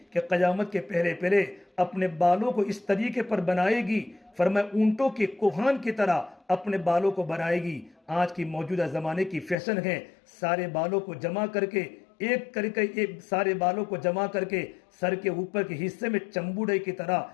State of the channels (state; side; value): drops out; right; at 9.6 s